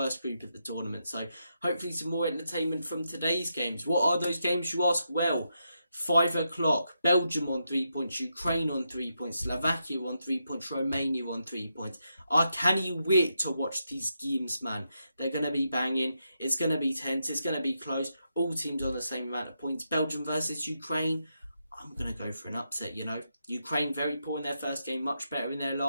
group of the tournament. So hopefully some more entertainment from today's games. What are those games, you ask? Well, 5 o'clock, Belgium on 3 points, Ukraine on 3 points, Slovakia on 3 points, Romania on 3 points. I can't wait to watch these games, man. They're going to be banging. It's going to be tense. It's going to be close. All teams on the same amount of points. Belgium versus Ukraine. I'm going to go for an upset, Ukraine very poor in their first game, much better in their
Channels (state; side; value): inverted; both; correlation -0.84